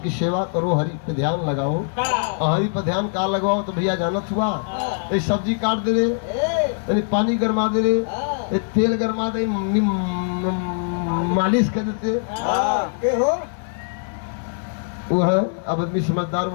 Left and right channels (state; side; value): silent; right; digital silence